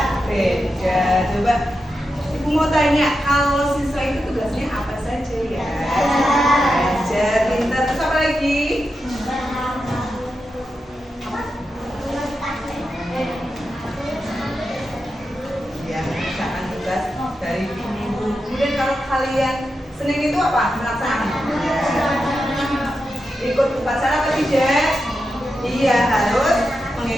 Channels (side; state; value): both; normal; correlation 0.88